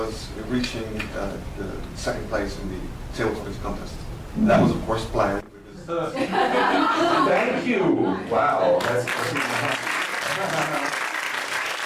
reaching the 2nd place in the table tennis contest. That was, of course, planned. Thank you! Wow, that's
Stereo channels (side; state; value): both; identical; correlation 1.00